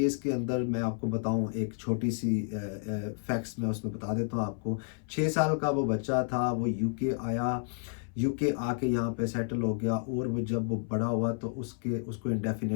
के अंदर मैं आपको बताऊं, एक छोटी सी फैक्ट्स मैं उसमें बता देता हूं आपको। 6 साल का वो बच्चा था, वो यूके आया, यूके आके यहाँ पे सेटल हो गया, और वो जब वो बड़ा हुआ तो उसको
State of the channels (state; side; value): silent; right; 57 dB below the other